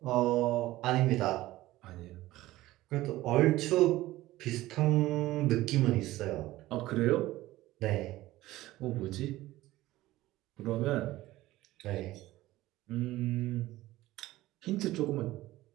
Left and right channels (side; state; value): left; quieter; 16.8 dB